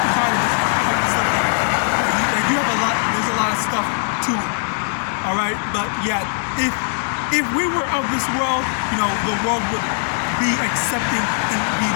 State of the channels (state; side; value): silent; right; 56 dB below the other